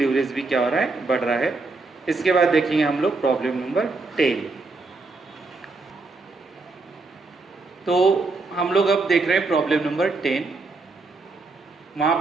भी क्या हो रहा है, बढ़ रहा है। इसके बाद देखेंगे हम लोग प्रॉब्लम नंबर 10। तो हम लोग अब देख रहे हैं प्रॉब्लम नंबर 10। वहां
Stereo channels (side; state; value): left; quieter; 3.7 dB